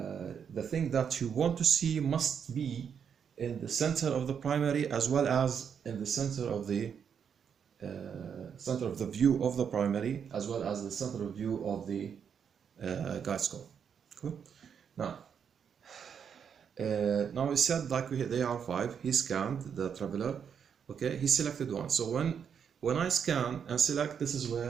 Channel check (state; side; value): quieter; left; 7.4 dB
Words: thing that you want to see must be in the center of the primary as well as in the center of the view of the primary as well as the center of view of the guide scope. Cool. Now we said, like they are 5. He scanned the traveler. Okay, he selected one. So when I scan and select, this is